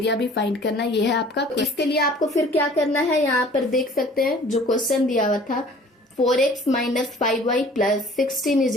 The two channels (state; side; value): normal; both; correlation 0.50